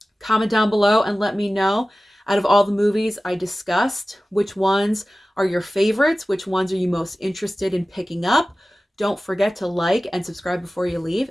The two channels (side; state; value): both; normal; correlation 0.96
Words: Comment down below and let me know, out of all the movies I discussed, which ones are your favorites? Which ones are you most interested in picking up? Don't forget to like and subscribe before you leave,